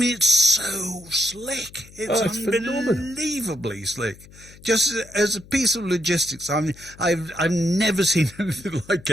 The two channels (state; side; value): noise; left; hum, 22 dB below the sound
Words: so slick. It's unbelievably slick. Just as a piece of logistics, I've never seen anything like